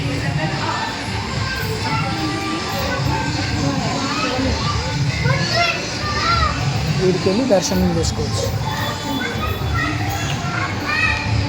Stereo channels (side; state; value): both; identical; correlation 1.00